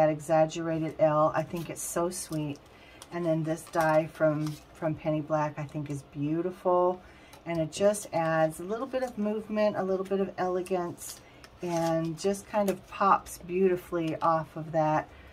exaggerated L. I think it's so sweet. And then this die from Penny Black I think is beautiful. And it just adds a little bit of movement, a little bit of elegance, and just kind of pops beautifully off of that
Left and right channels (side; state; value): both; identical; correlation 1.00